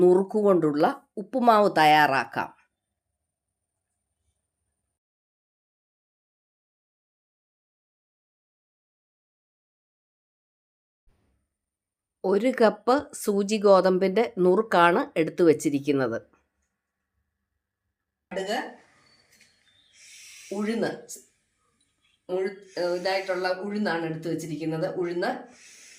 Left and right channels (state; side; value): identical; both; correlation 1.00